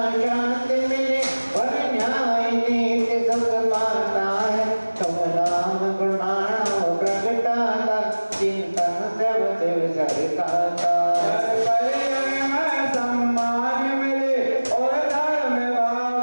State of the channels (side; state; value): both; inverted; correlation -1.00